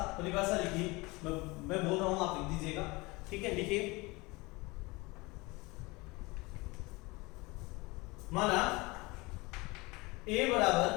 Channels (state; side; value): quieter; right; 24.2 dB